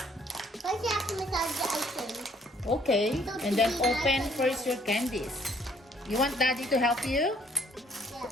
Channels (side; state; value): both; normal; correlation 0.63